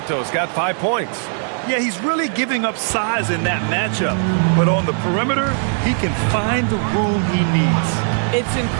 got 5 points. Yeah, he's really giving up size in that matchup. But on the perimeter, he can find the room he needs. It's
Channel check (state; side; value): silent; left; 59 dB below the other